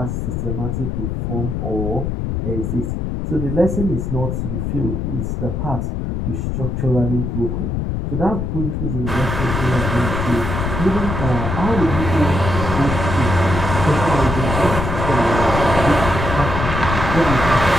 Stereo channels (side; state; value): left; noise; rumble, 2 dB below the sound